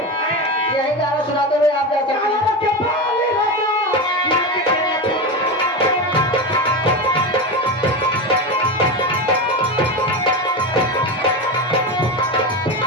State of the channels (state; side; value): normal; both; correlation 0.19